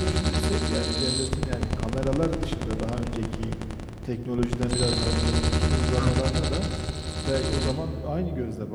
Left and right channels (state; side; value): identical; both; correlation 1.00